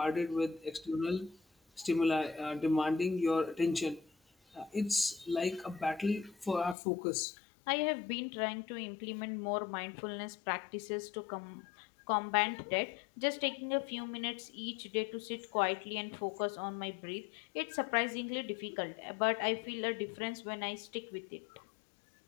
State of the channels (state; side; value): drops out; right; at 6.8 s